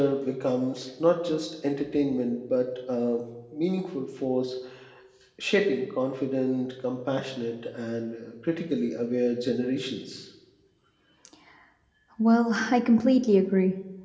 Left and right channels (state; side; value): identical; both; correlation 1.00